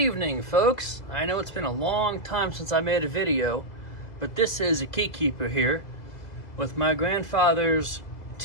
folks. I know it's been a long time since I made a video, but this is a KeyKeeper here with my grandfather's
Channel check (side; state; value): right; late; 2.0 ms